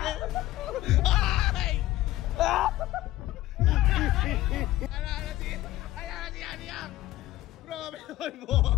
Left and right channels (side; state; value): right; quieter; 15.8 dB